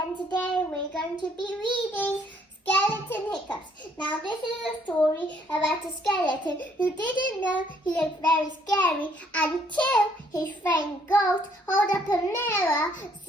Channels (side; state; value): both; normal; correlation 0.66